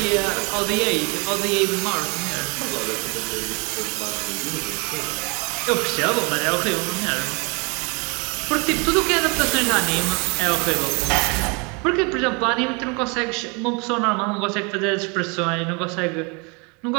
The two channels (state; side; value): quieter; left; 31.2 dB